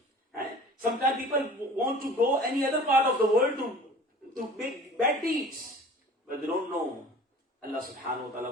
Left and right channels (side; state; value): both; normal; correlation 0.44